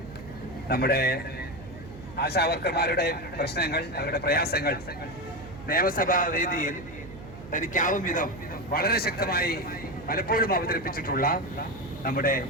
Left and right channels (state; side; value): noise; right; hum, 15 dB below the sound